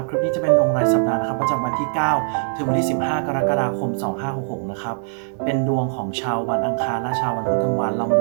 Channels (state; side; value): silent; left; digital silence